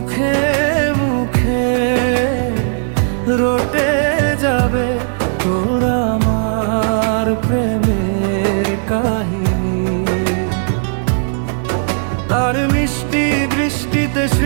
মুখে রটে যাবে তোর আমার প্রেমের কাহিনী। তার মিষ্টি দৃষ্টিতে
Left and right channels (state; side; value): silent; left; digital silence